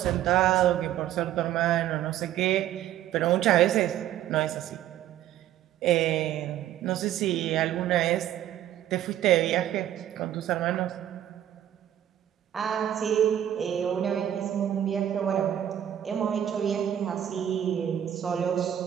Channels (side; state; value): left; quieter; 11.4 dB